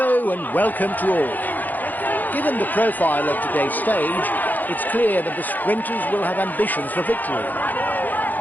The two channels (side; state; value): right; late; 0.084 ms